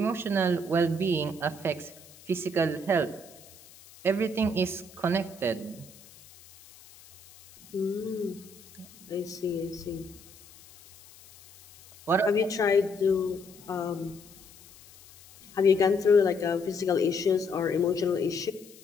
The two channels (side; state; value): left; noise; hiss, 23 dB below the sound